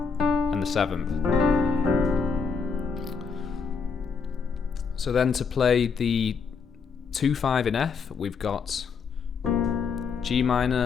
and the 7th. So then to play the 2-5 in F, we've got G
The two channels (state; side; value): quieter; right; 5.5 dB